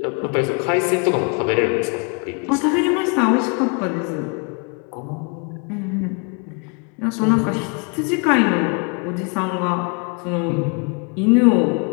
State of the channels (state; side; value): quieter; right; 35.4 dB